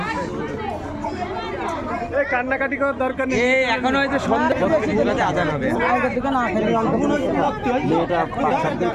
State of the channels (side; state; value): both; identical; correlation 1.00